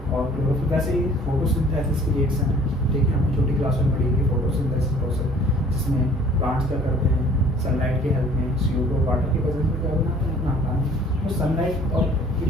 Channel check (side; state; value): both; normal; correlation 0.53